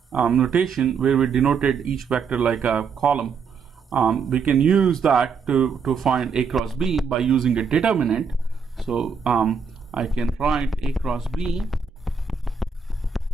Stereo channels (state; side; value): quieter; left; 5.8 dB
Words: notation where we denoted each vector like a column, we can use that to find a cross b by using a determinant. So I can write a cross b